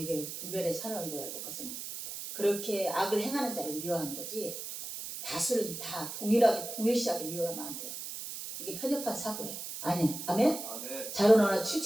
분별의 산을 이루어야 될 것은 그렇게 악을 행하는 자를 미워하는 거지 다수를 다 동일시하게 미워하면 안 돼요. 이게 편협한 사고예요. 아니, 아멘? 아멘. 자로나나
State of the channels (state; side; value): noise; right; hiss, 8 dB below the sound